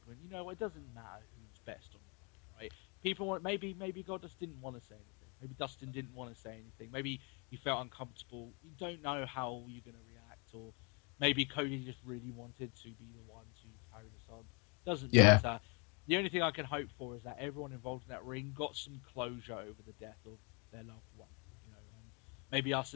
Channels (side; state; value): right; quieter; 32.9 dB